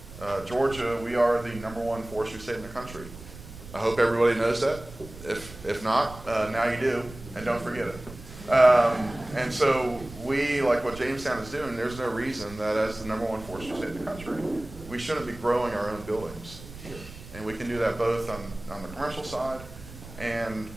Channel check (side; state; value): right; noise; rumble, 16 dB below the sound